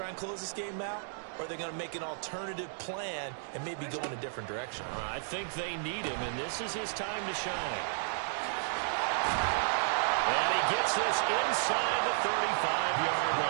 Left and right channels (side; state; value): left; silent; digital silence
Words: and close this game out? Or are they going to make an alternative plan and maybe go in a different direction? I think they need him, and this is his time to shine. And he gets this inside the 35-yard